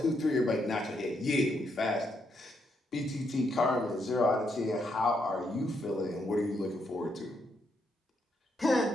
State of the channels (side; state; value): both; normal; correlation 0.78